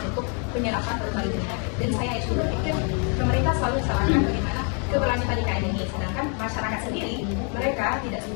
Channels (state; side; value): quieter; right; 39.7 dB